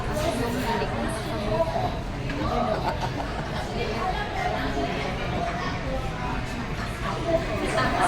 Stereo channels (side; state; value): both; identical; correlation 1.00